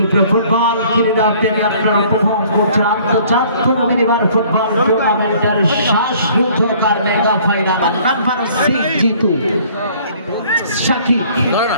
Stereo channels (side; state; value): both; inverted; correlation -0.56